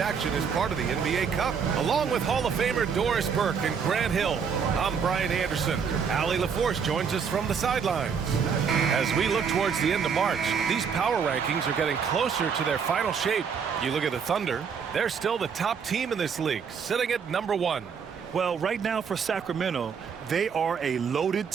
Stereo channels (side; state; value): left; quieter; 6.5 dB